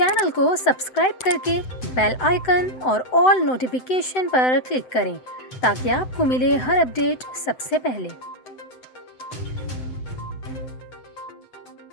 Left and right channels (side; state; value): right; late; 7.8 ms